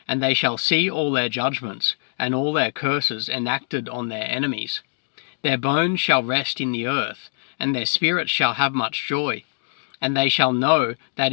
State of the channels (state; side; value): silent; right; digital silence